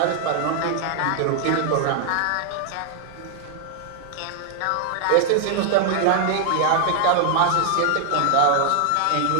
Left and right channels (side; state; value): both; different; correlation 0.00